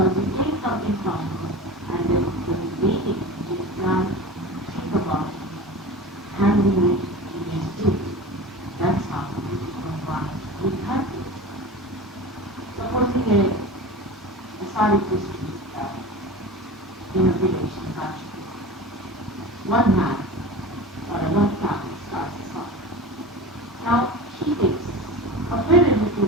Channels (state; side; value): normal; both; correlation 0.32